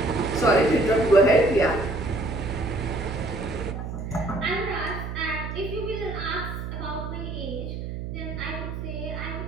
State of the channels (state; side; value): noise; right; hum, 6 dB below the sound